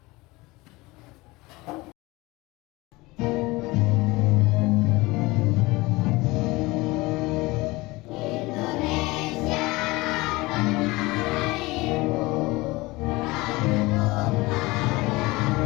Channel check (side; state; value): right; quieter; 22.0 dB